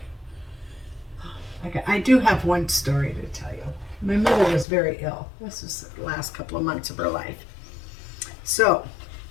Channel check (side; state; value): right; drops out; at 4.7 s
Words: I do have one story to tell you. My mother was very ill. This was the last couple of months of her life. So